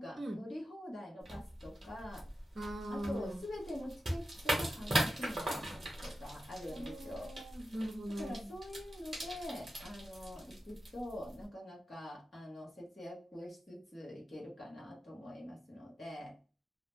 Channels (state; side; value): normal; both; correlation 0.91